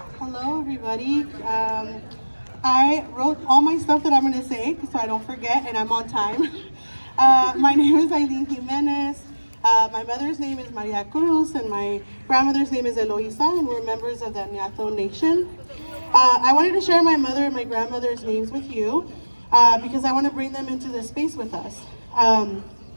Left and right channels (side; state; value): both; inverted; correlation -1.00